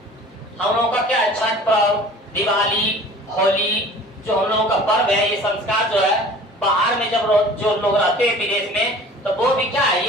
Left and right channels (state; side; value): normal; both; correlation 0.45